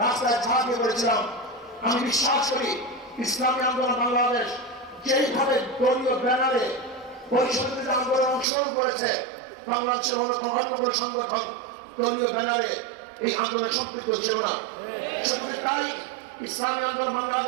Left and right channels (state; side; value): drops out; left; at 8.5 s